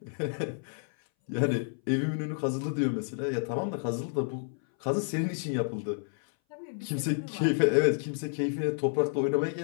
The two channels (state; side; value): silent; right; 58 dB below the other